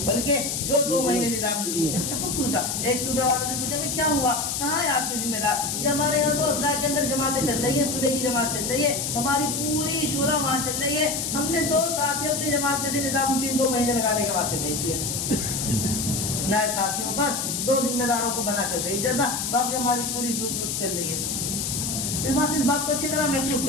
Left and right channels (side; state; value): left; noise; hiss, 2 dB below the sound